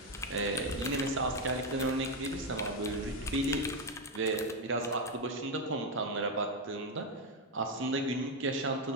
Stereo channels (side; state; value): both; normal; correlation 0.06